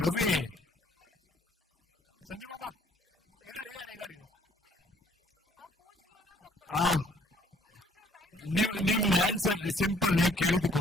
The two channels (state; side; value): normal; both; correlation 0.62